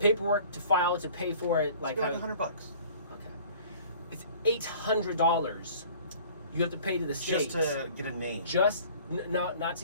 to file it, to pay for it, like $100. Okay, it's $800. You have to pay to the state just to get a name. Just not to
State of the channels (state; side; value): inverted; both; correlation -0.49